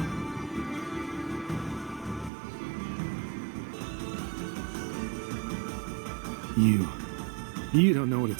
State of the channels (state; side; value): drops out; left; at 2.3 s